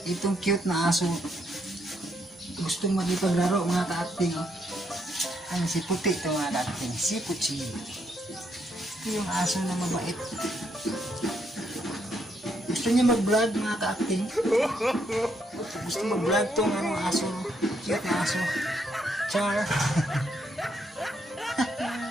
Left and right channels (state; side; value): normal; both; correlation 0.75